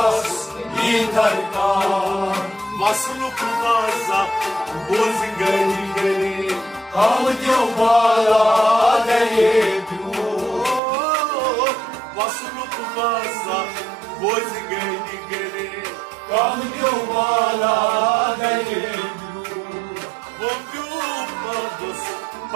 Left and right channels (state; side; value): drops out; left; at 10.8 s